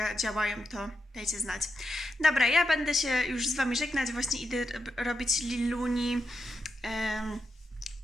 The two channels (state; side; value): normal; both; correlation 0.85